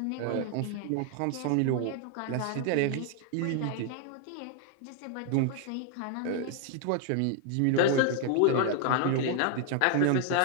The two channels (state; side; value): different; both; correlation 0.00